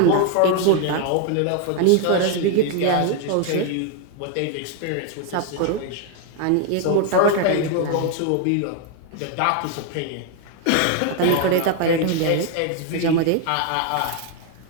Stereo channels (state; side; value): different; both; correlation 0.00